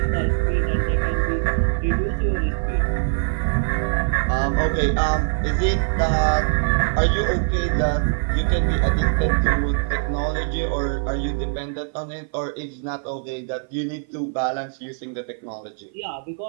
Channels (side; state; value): left; silent; 57 dB below the other